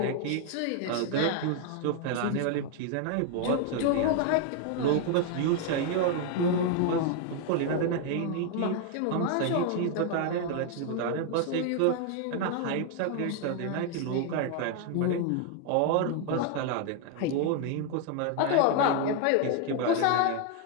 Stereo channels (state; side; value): different; both; correlation 0.00